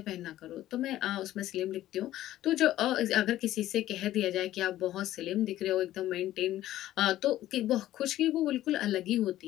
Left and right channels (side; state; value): right; quieter; 14.0 dB